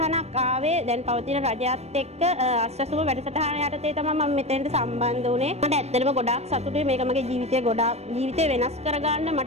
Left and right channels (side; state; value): left; late; 0.31 ms